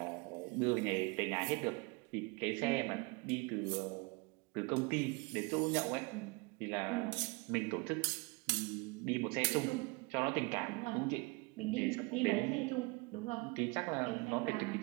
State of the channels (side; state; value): left; quieter; 28.0 dB